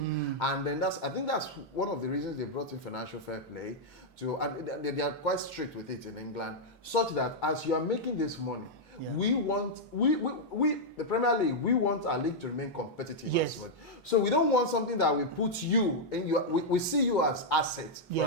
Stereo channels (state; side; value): normal; both; correlation -0.04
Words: and then I think that's one of the reasons they brought in financial fair play and they are quite strict with it in England, such that as you are making this money, we the Premier League, we want our league to remain competitive as well. So we don't want something that will put you in we see you as assets for